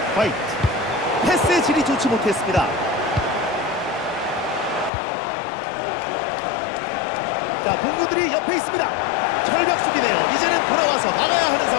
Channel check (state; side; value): drops out; right; at 4.9 s